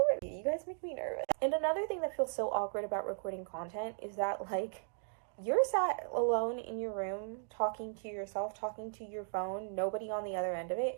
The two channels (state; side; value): silent; left; digital silence